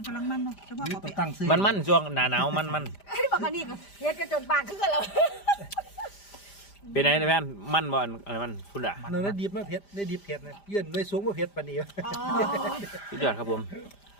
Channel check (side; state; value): right; late; 5.0 ms